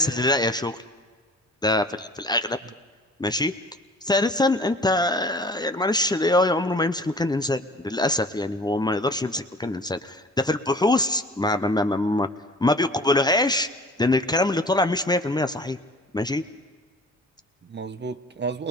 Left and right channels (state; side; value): normal; both; correlation 0.45